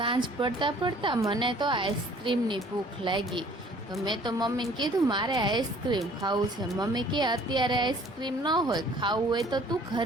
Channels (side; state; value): both; normal; correlation 0.55